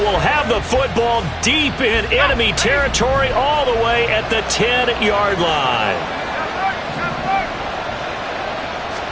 have the football deep in enemy territory all the way at the 10-yard line.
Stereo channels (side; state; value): both; identical; correlation 1.00